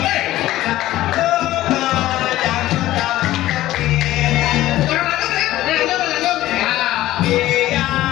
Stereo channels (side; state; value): right; quieter; 15.3 dB